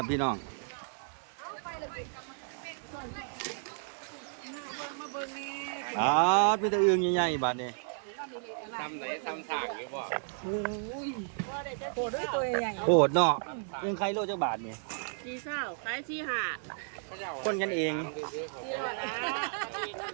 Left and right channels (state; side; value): silent; left; digital silence